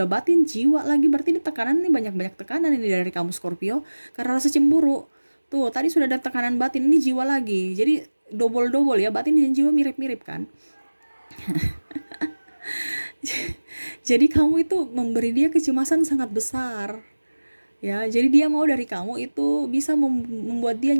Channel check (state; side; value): inverted; both; correlation -1.00